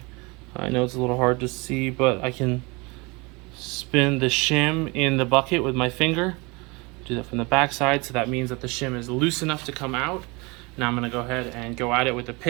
I know it's a little hard to see, but I can spin the shim in the bucket with my finger. Do that from the back side, so that means that the shim is loose enough to come out. Now I'm going to go ahead and go at it with the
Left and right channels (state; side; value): quieter; left; 27.0 dB